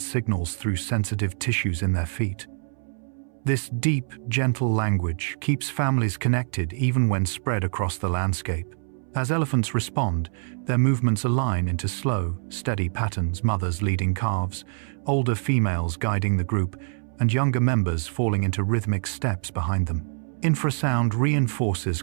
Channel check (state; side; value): silent; left; 62 dB below the other